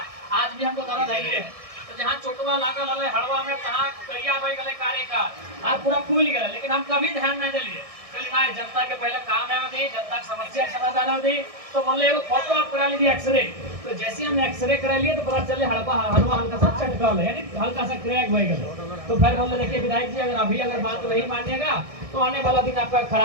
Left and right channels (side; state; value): left; late; 1.6 ms